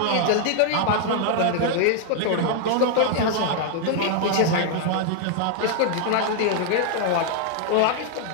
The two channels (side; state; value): both; different; correlation 0.00